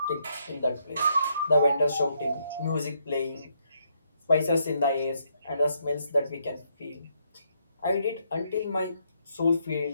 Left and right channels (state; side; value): inverted; both; correlation -0.75